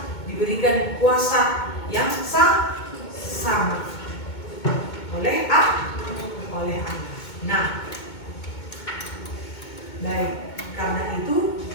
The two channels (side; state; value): right; late; 2.2 ms